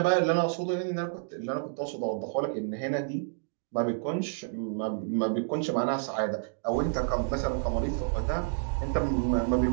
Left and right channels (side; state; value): left; silent; digital silence